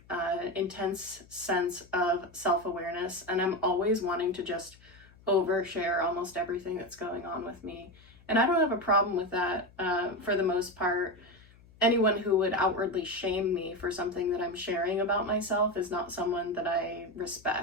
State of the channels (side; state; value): left; noise; hum, 26 dB below the sound